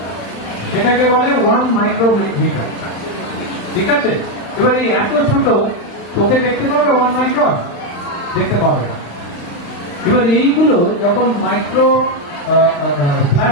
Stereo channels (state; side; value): late; right; 35 ms